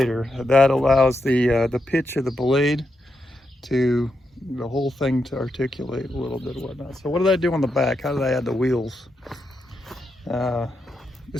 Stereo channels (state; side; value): normal; both; correlation 0.84